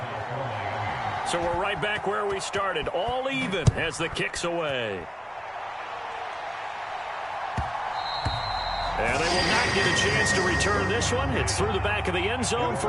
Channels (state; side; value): identical; both; correlation 1.00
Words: So we're right back where we started. All even as the kick's away. And they will not get a chance to return this one. It's through the back of the end zone